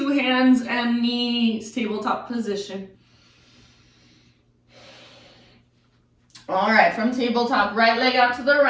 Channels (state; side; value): identical; both; correlation 1.00